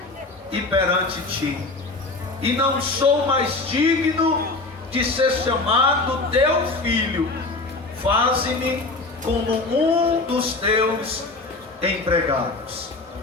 e perante ti, e não sou mais digno de ser chamado teu filho. Faze-me como um dos teus empregados.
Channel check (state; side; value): quieter; right; 3.3 dB